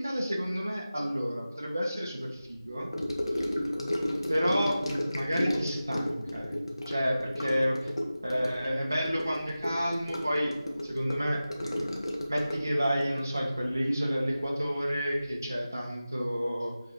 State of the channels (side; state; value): both; inverted; correlation -0.94